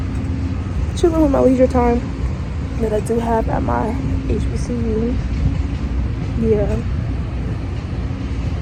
chilling with my leisure time that I do have at my HBCU. Yeah.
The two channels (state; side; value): identical; both; correlation 1.00